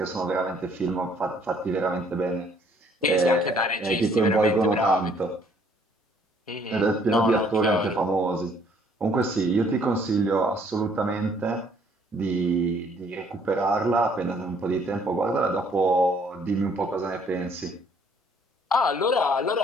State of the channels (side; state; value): both; normal; correlation 0.63